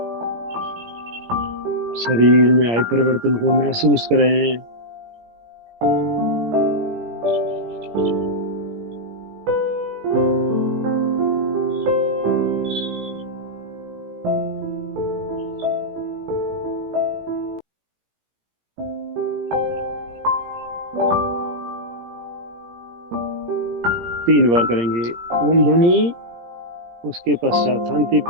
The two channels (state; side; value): late; left; 17 ms